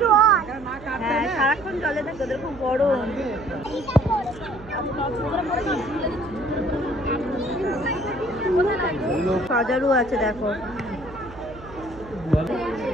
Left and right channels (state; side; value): noise; right; hum, 17 dB below the sound